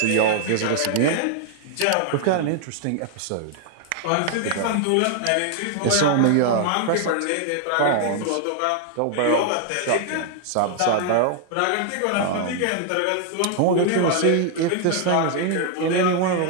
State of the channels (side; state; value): both; different; correlation 0.00